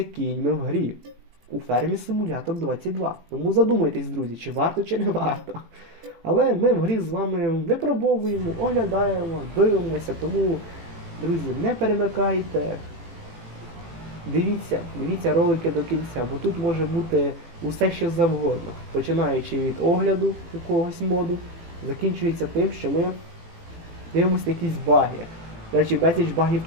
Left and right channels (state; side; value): late; left; 18 ms